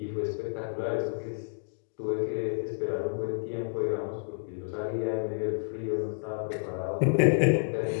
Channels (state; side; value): silent; right; digital silence